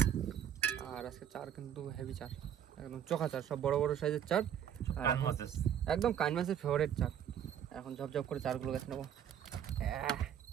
আর আজকে চার কিন্তু হেভি চার, একদম চোখা চার, সব বড় বড় সাইজের চার। আর একদম কান মাছের ফেভারিট চার। এখন ঝপঝপ করে চারগুলো গেছে নেবো।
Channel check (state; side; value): quieter; left; 9.5 dB